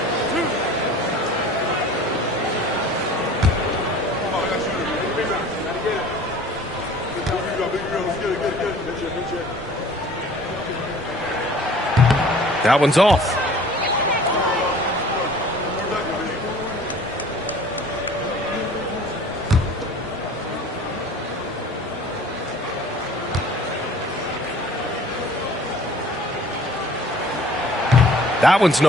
That one's off. That one's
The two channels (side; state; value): both; normal; correlation 0.48